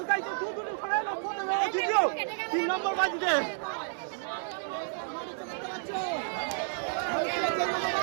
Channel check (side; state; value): left; silent; digital silence